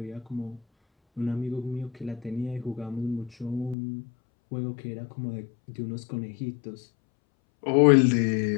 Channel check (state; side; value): drops out; right; at 3.8 s